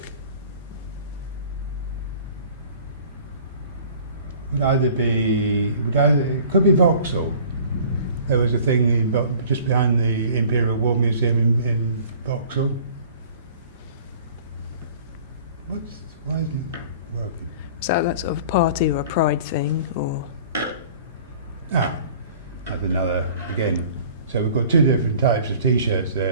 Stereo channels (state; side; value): inverted; both; correlation -0.48